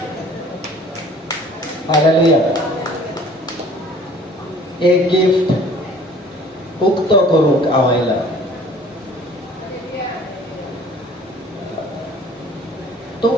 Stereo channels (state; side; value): normal; both; correlation 0.51